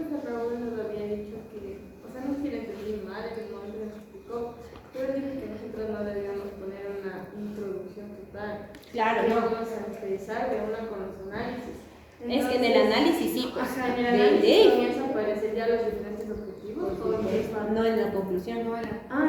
Raúl nos había dicho que, o sea, no sé si le entendí mal en el momento que nos explicó, pero dijo que nosotros no debíamos poner una introducción total. Claro, que no. vamos a empezar de una con los análisis. Entonces, es que en el análisis sí, pues. Ajá, en el análisis comienzan a aparecer ya los diferentes objetivos. No en la conclusión. No era.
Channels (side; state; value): both; identical; correlation 1.00